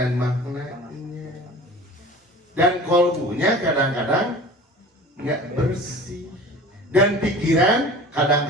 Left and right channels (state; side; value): normal; both; correlation 0.40